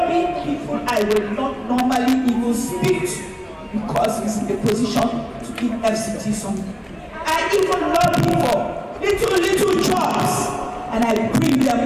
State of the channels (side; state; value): both; identical; correlation 1.00